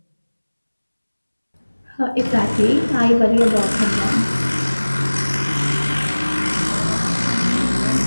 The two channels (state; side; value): inverted; both; correlation -1.00